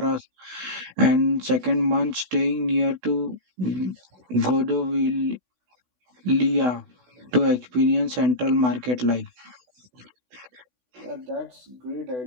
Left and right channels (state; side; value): late; left; 16 ms